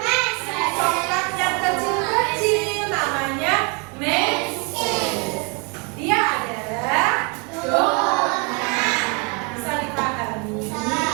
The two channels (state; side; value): quieter; left; 33.0 dB